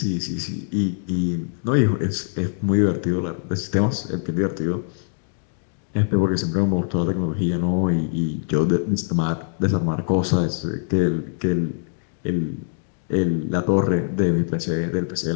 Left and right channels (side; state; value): right; silent; digital silence